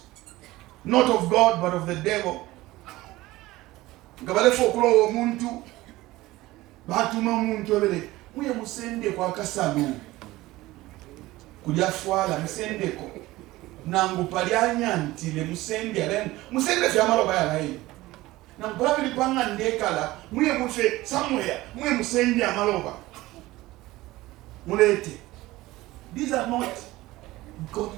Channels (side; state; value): left; quieter; 18.3 dB